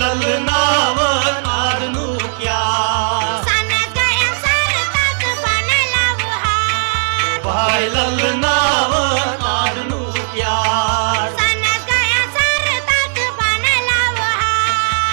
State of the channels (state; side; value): silent; left; digital silence